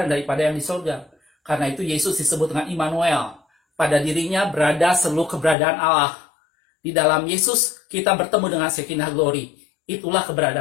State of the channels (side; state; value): right; drops out; at 5.6 s